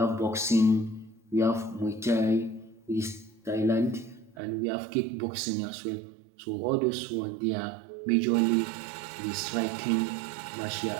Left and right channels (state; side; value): drops out; left; at 4.4 s